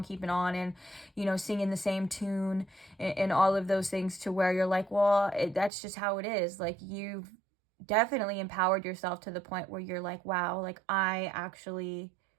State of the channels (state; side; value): drops out; left; at 5.7 s